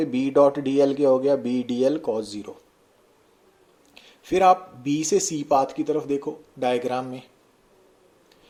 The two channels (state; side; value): identical; both; correlation 1.00